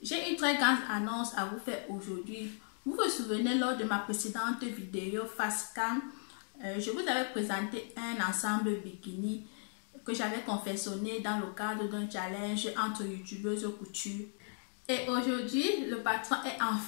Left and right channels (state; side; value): silent; right; 54 dB below the other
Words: J'ai une très grande annonce à vous faire aujourd'hui. Vous vous souvenez lors de ma précédente vidéo face cam, je vous avais présenté un ensemble bikini que j'avais confectionné dans le cadre d'un challenge entre youtubeuses couture. Et aujourd'hui, le patron est